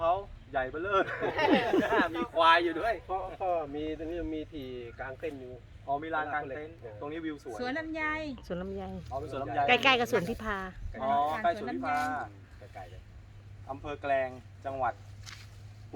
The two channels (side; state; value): both; identical; correlation 1.00